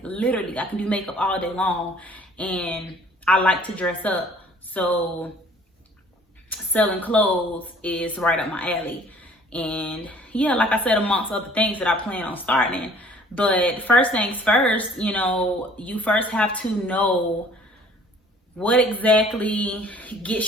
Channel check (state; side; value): normal; both; correlation 0.54